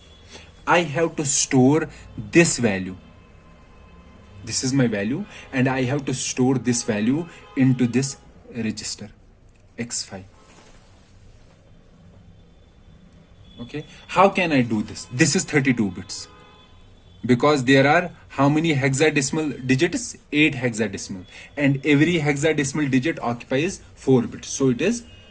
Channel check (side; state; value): both; identical; correlation 1.00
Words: I have to store this value. This is my value, and I have to store this value into this register x5. Okay, how can I do this? This is 32 bits, because there are how many hexadecimal digits? 8 hexadecimal, and every hexadecimal digit occupies 4 bits, so it is